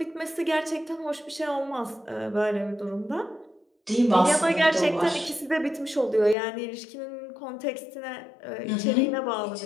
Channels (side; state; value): right; drops out; at 6.4 s